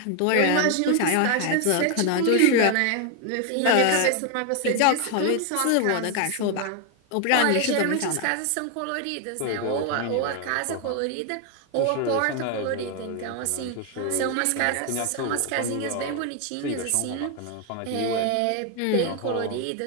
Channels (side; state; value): both; different; correlation 0.01